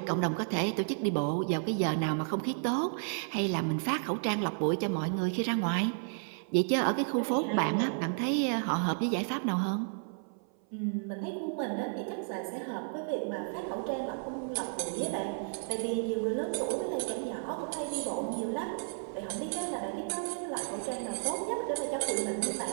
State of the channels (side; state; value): left; silent; 56 dB below the other